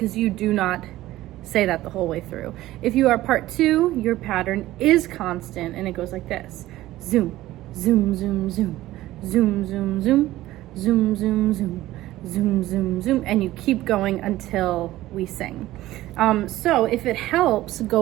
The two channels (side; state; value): left; quieter; 15.8 dB